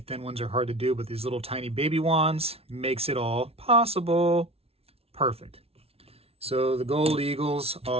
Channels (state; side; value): late; left; 0.29 ms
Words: ones are hard to do, but these little tiny baby wands makes it all possible. Perfect. So the gold eagles